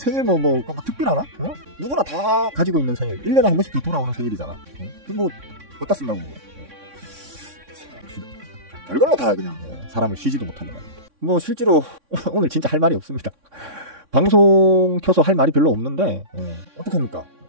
특별하나? 누구나 다 가지고 있는 생일, 1년에 한 번씩 돌아오는 생일이잖아. 어디다 쓴다고. 별걸로 다 그냥 사람을 쉬지도 못하게 말입니다. 실제로 오늘 진짜 할 말이 없습니다. 방송 켜서 할 말이 별로 없는데 어떡합니까?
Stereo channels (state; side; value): late; left; 3.6 ms